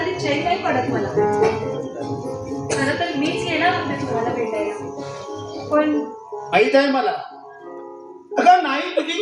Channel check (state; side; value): identical; both; correlation 1.00